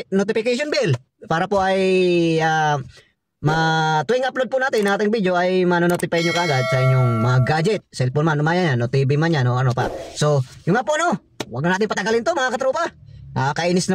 bell para po ay tuwing upload po natin ng ating video ay manonotify nyo kagad sa inyong mga gadget, cellphone man, yan, o TV man yan, o ano pa. So, yung nga po no, huwag na natin patagalin to mga katropa. Kainis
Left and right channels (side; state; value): both; identical; correlation 1.00